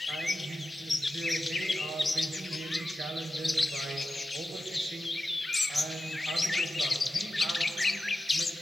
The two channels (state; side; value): normal; both; correlation 0.92